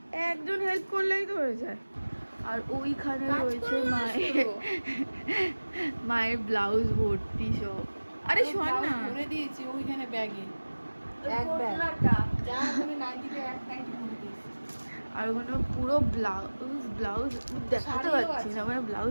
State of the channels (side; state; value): both; inverted; correlation -1.00